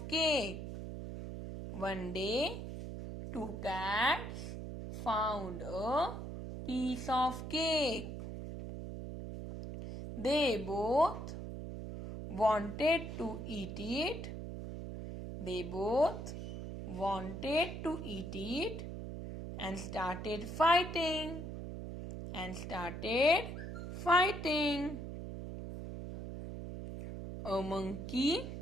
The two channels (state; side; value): noise; right; hum, 7 dB below the sound